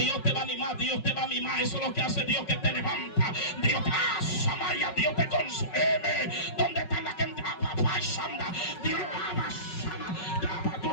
te va a animar, Dios te va a mimar. Eso es lo que hace Dios, que te levanta. Dios te Samaya, Dios te consume. ¿Dónde está la gente? Dios tú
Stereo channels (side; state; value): right; late; 5.4 ms